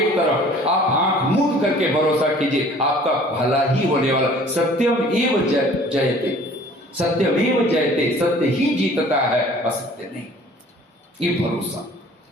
तरफ, आप आंख मूंद करके भरोसा कीजिए, आपका भला ही होने वाला। सत्यम एव जयते, सत्यम एव जयते, सत्य ही जीतता है, असत्य नहीं, ये भरोसा।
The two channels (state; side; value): normal; both; correlation 0.51